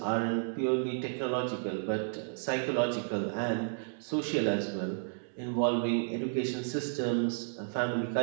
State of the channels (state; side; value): silent; left; digital silence